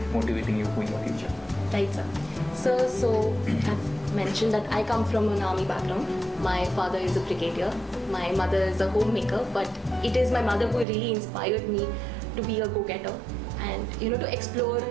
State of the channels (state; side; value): drops out; left; at 10.9 s